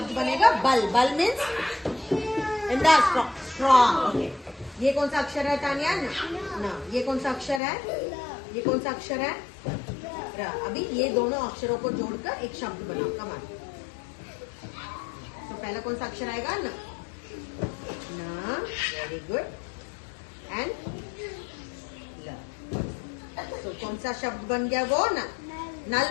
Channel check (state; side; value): drops out; right; at 7.6 s